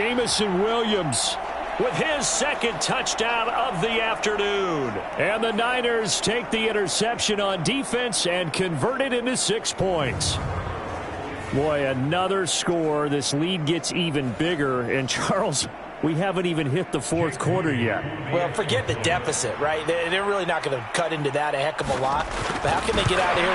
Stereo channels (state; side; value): identical; both; correlation 1.00